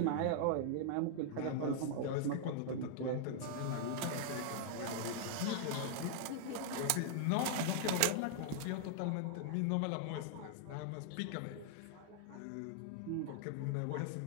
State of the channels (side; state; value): both; different; correlation -0.01